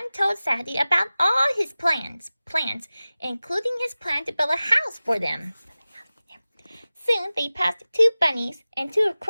told Sadie about all his plans, including his plan to build a house for them. Soon they passed 2 bunnies and 2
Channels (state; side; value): inverted; both; correlation -0.97